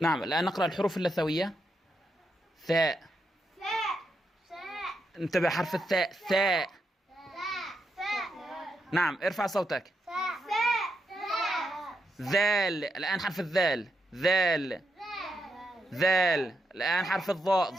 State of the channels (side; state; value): both; normal; correlation 0.83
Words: نعم، الآن نقرأ الحروف اللثوية. ثاء. انتبه، حرف الثاء. ثاء. نعم، ارفع صوتك. ذال. الآن حرف الذال. ذال. ذال. الآن حرف الضاء.